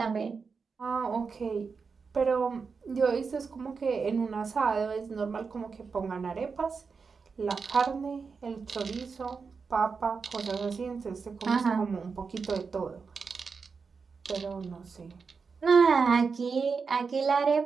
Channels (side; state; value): left; quieter; 5.2 dB